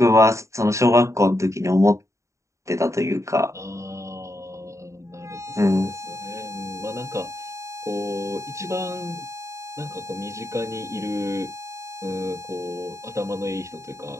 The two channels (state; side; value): late; left; 0.14 ms